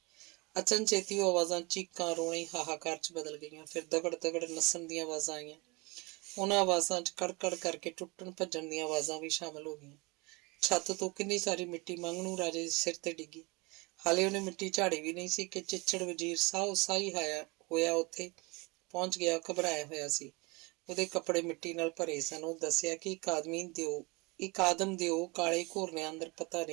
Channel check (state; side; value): quieter; left; 26.2 dB